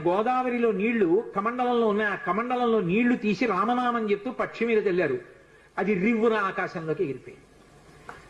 గోదావరిలో నీళ్లు కమండలంలో ఉన్నాయి, ఆ కమండలంలో నీళ్లు తీసి రామనామం చెప్తూ పక్షి మీద తెల్లారు. అది రివ్వున ఆకాశంలోకి ఎగిరిపోయింది.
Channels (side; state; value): both; identical; correlation 1.00